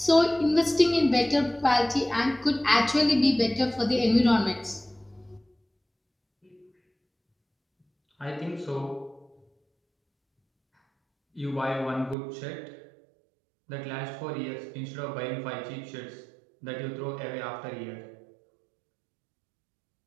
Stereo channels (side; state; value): left; drops out; at 12.2 s